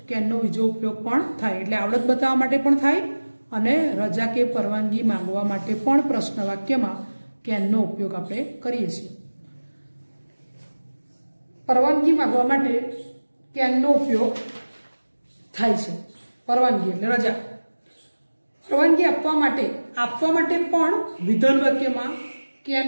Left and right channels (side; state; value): both; inverted; correlation -1.00